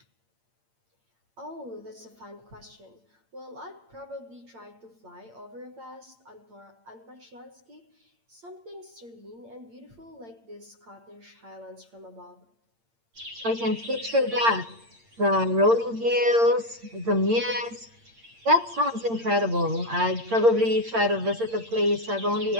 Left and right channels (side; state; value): left; late; 8.7 ms